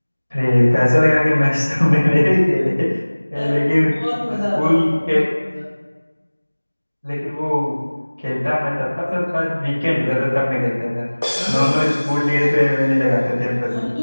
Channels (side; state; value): both; inverted; correlation -1.00